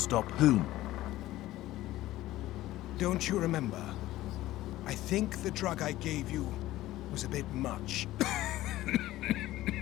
whom? Don't you remember? I think the drug I gave you was a bit much.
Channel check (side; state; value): right; quieter; 15.9 dB